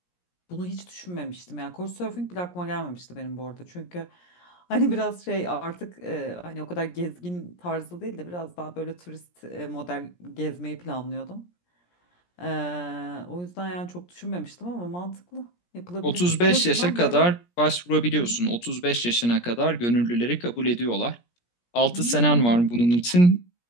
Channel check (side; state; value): right; late; 17 ms